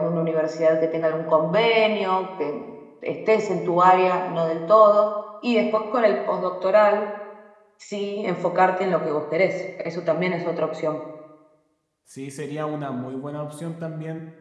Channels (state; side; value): identical; both; correlation 1.00